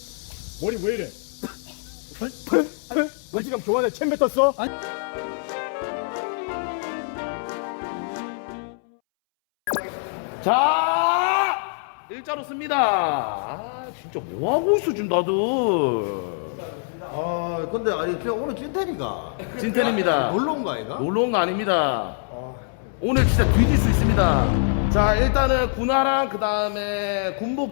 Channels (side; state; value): right; silent; 63 dB below the other